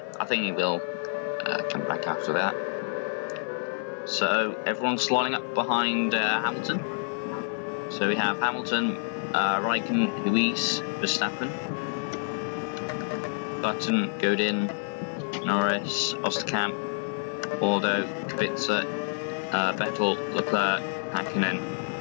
I think he will come back after that. So everyone's lining up behind Hamilton. So we have Hamilton, Raikkonen, Ruiz, Verstappen, Button, Godin, Norris, Osterkamp, Waldo, Kubica, Vettel, Leclerc, Hakkinen,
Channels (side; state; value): right; silent; digital silence